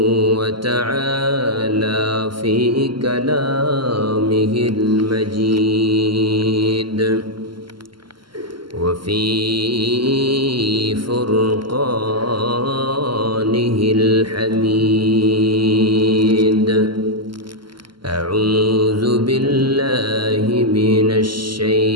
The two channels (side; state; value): left; late; 0.72 ms